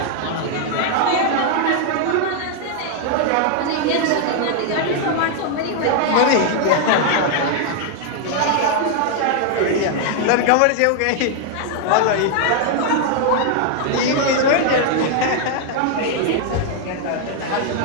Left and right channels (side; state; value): both; different; correlation 0.00